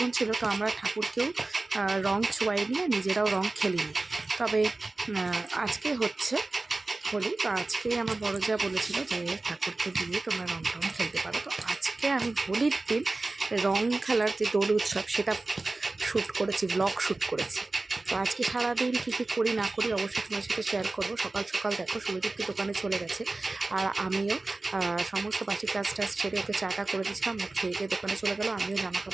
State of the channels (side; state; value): left; quieter; 3.2 dB